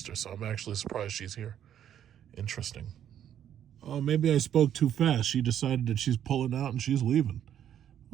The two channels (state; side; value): quieter; left; 10.1 dB